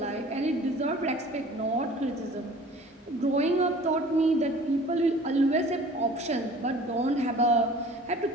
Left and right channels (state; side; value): normal; both; correlation 0.47